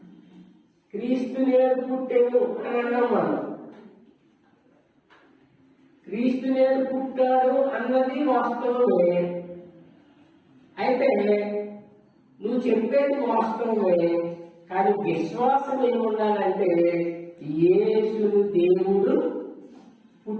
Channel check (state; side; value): identical; both; correlation 1.00